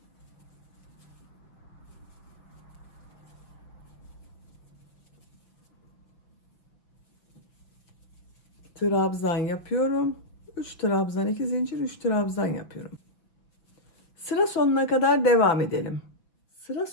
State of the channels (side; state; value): right; late; 5.9 ms